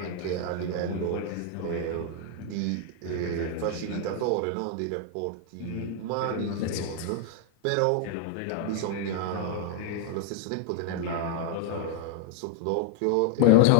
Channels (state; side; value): different; both; correlation 0.00